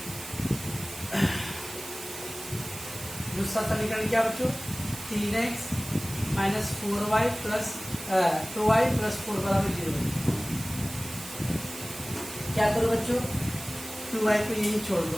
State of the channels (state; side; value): noise; right; hiss, 12 dB below the sound